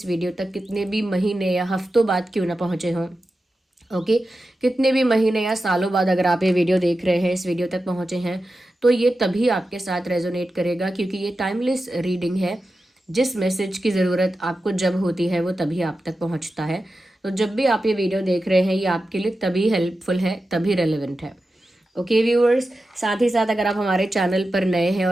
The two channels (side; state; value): both; normal; correlation 0.92